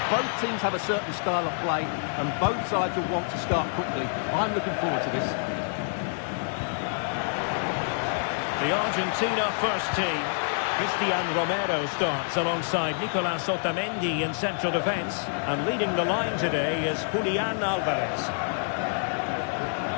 Both teams have a certain style of play, and both sides will want to start quickly. I'm looking forward to this. The Argentina first team. Cristian Romero starts alongside Nicolas Otamendi in central defence. And leading the line today is Julian Alvarez.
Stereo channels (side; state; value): right; silent; 60 dB below the other